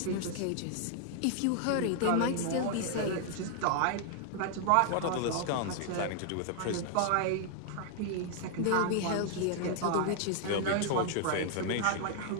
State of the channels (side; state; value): both; different; correlation 0.00